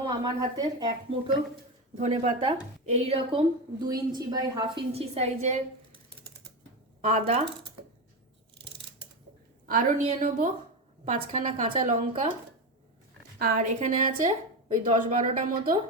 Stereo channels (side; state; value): both; normal; correlation 0.16